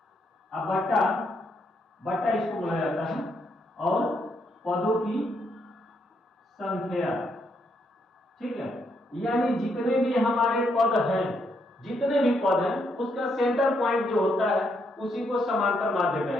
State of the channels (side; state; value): both; normal; correlation 0.76